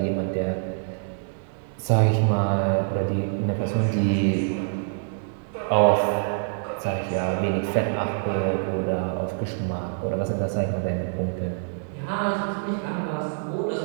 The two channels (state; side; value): silent; left; 61 dB below the other